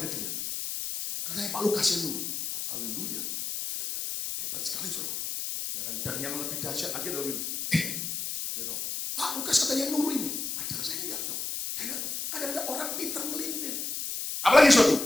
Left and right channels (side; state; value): left; noise; hiss, 4 dB below the sound